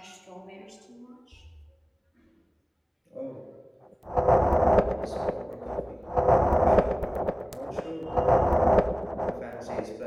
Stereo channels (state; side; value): identical; both; correlation 1.00